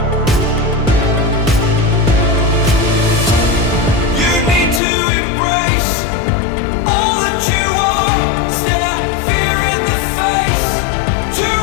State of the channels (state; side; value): drops out; right; at 4.8 s